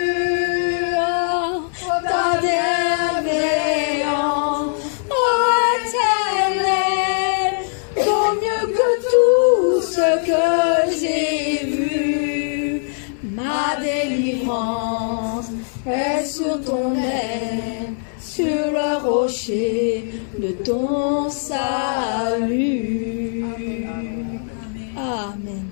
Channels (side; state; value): right; silent; digital silence